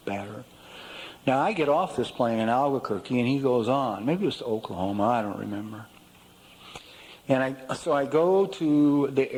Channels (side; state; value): both; identical; correlation 1.00